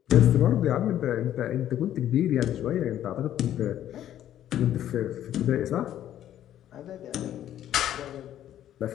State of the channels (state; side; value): quieter; right; 11.6 dB